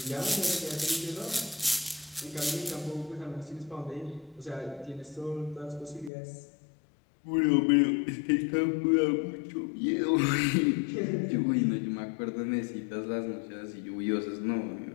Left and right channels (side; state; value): right; drops out; at 6.1 s